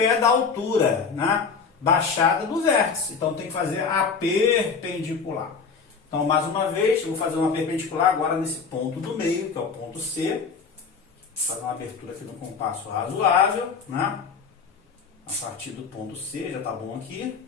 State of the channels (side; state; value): right; quieter; 5.5 dB